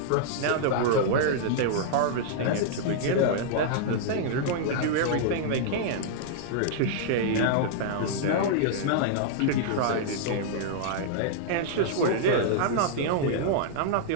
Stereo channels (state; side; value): different; both; correlation -0.01